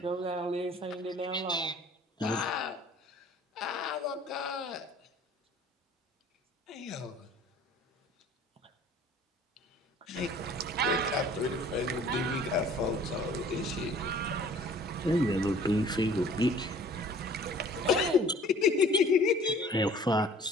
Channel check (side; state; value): both; normal; correlation 0.51